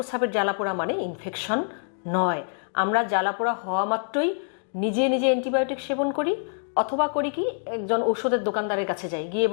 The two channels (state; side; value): silent; right; digital silence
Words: জ্বালাপোড়া মানে ইনফেকশন নয়। আমরা জ্বালাপোড়া হওয়া মাত্রই নিজে নিজে অ্যান্টিবায়োটিক সেবন করি, অথবা করি কি একজন ওষুধের দোকানদারের কাছে যাই, গিয়ে